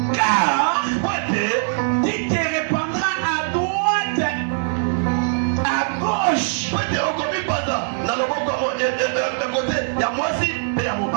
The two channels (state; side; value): silent; left; 63 dB below the other